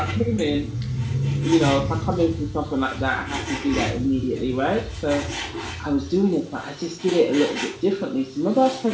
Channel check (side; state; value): both; identical; correlation 1.00